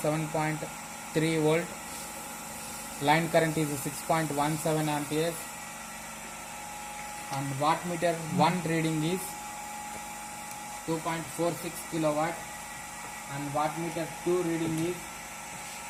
volt, line current is 6.17 amperes, and wattmeter 1 reading is 2.46 kilowatt, and wattmeter 2 reading is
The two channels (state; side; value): identical; both; correlation 1.00